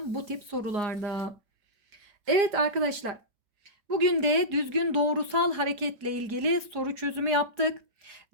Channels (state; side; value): late; left; 5.1 ms